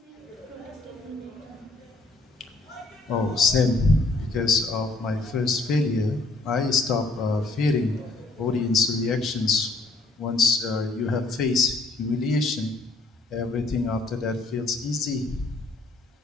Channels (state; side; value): quieter; right; 3.2 dB